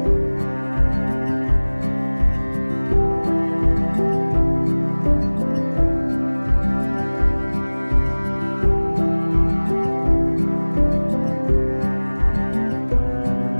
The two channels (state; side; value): inverted; both; correlation -1.00